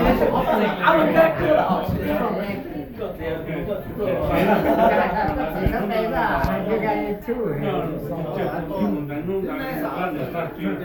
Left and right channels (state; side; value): identical; both; correlation 1.00